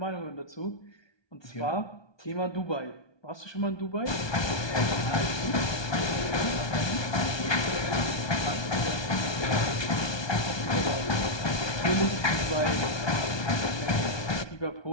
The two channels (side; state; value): right; late; 1.2 ms